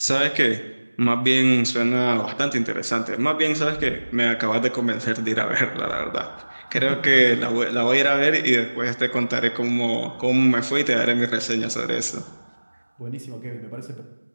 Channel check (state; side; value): inverted; both; correlation -1.00